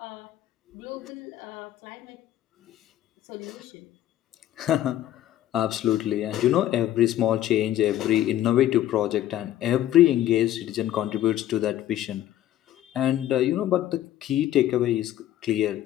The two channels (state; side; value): quieter; right; 12.9 dB